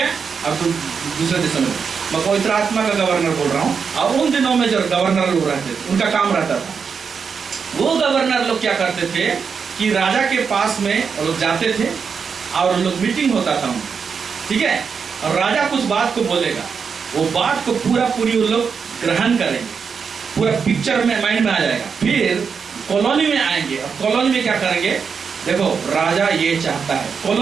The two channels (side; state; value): left; quieter; 6.0 dB